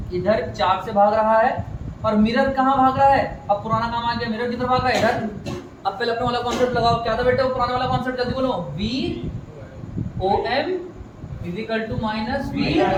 इधर 4 से भाग रहा है और मिरर कहाँ भाग रहा है, अब पुराना काम आ गया, मिरर किधर भाग रहा है इधर। अब पहले अपने वाला कॉन्सेप्ट लगाओ, क्या था बेटा वो पुराना वाला कॉन्सेप्ट, जल्दी बोलो, VOM =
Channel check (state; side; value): identical; both; correlation 1.00